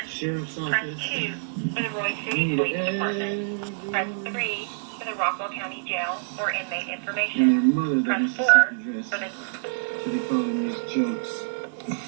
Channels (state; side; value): silent; left; digital silence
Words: Press 2 for the Roy City Police Department. Press 3 for the Rockwell County Jail or inmate information. Press 4 for the... So they call them these jokes.